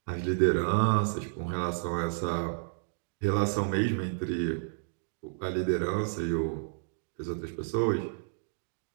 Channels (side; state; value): left; silent; digital silence